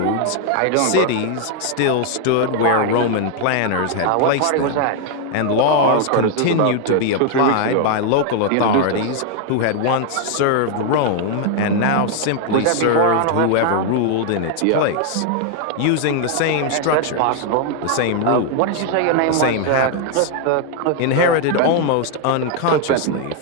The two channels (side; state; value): both; different; correlation 0.00